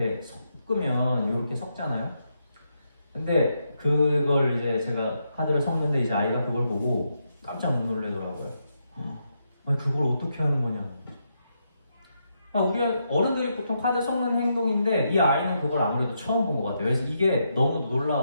섞으면 이렇게 섞잖아요. 근데 그걸 이제 제가 카드를 섞는데 이제 아이가 그걸 보고 깜짝 놀라더라고요. 그걸 어떻게 하는 거냐. 우리 어른들이 보통 카드 섞는 행동인데 이 아이는 그걸 아무래도 처음 본 것 같아요. 그래서 이게 너무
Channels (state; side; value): inverted; both; correlation -0.81